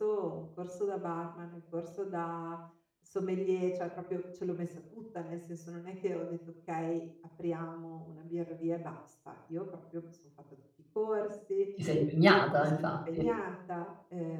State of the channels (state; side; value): identical; both; correlation 1.00